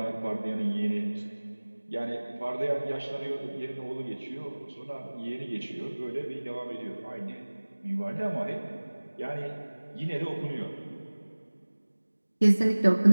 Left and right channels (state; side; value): inverted; both; correlation -1.00